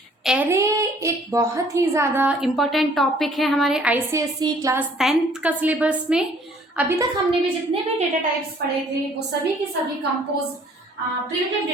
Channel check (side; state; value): both; normal; correlation 0.58